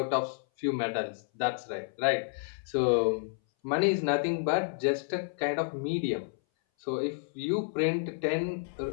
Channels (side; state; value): right; silent; 58 dB below the other